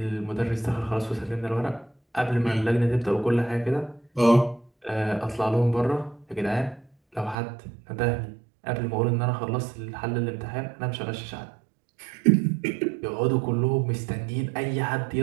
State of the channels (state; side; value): drops out; left; at 7.4 s